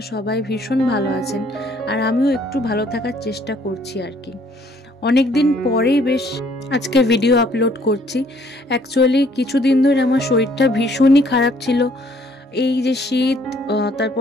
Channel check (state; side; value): normal; both; correlation 0.63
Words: সবাই ভীষণ ভালো আছেন, আর আমিও একটু ভালো থাকার চেষ্টা করছি আর কি। অনেক দিন পরেই বেশ আজকে ভিডিও আপলোড করছি। অ্যাকচুয়ালি কিছুদিন ধরে আমার শরীরটা ভীষণই খারাপ ছিল। এই যে শীত,